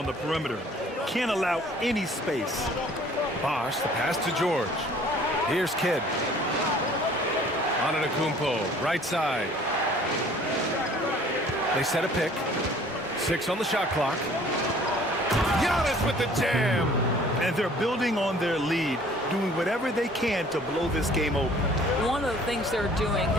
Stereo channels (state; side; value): normal; both; correlation 0.53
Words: the perimeter. Can't allow any space. Bosh, the pass to George. Here's Kidd. Antetokounmpo, right side. They set a pick. 6 on the shot clock. Giannis with the jam. And they're building on their lead, doing whatever they can to blow this game open. One of the things they're doing